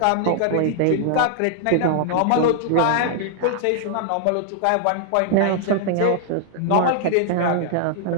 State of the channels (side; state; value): both; different; correlation -0.01